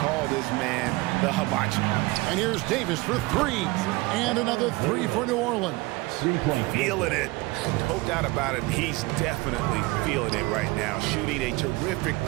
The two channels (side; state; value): left; quieter; 22.3 dB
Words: call this man the hibachi. And here's Davis for 3. And another 3 for New Orleans. 3-point. Feeling it. No doubt about it. He's definitely feeling it right now. Shooting a terrific